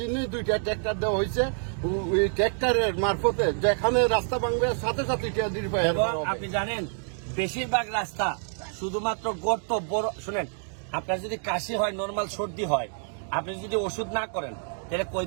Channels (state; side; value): silent; left; 60 dB below the other